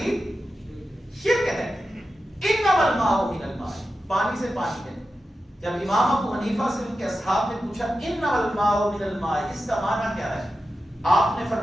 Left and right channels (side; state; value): both; normal; correlation 0.91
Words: شرک ہے۔ انما الماء من الماء، پانی سے پانی ہے۔ جب امام ابو حنیفہ سے ان کے اصحاب نے پوچھا انما الماء من الماء، اس کا معنی کیا ہے؟ آپ نے